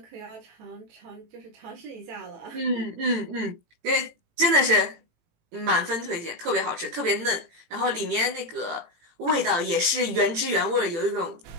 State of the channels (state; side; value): late; left; 18 ms